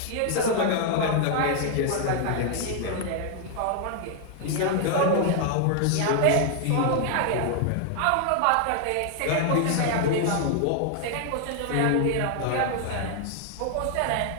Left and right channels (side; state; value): both; different; correlation 0.00